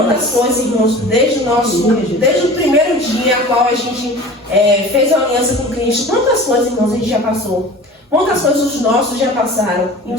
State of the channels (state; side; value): normal; both; correlation 0.39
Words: coisas, irmãos, desde o primeiro dia a qual a gente fez a aliança com Cristo, quantas coisas, irmãos, a gente já passou. Quantas coisas os nossos já passaram. E o